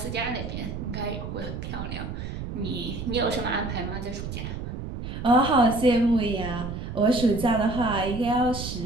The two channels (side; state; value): right; noise; rumble, 7 dB below the sound